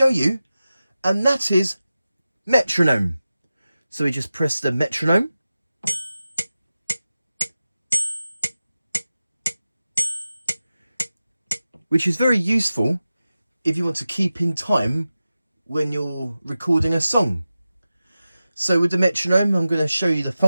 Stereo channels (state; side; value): inverted; both; correlation -0.94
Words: you, and that is metronome. So we just press the metronome. Which is very useful if you want to keep in time when you're recording a song. So with the metronome, I'm going to show you the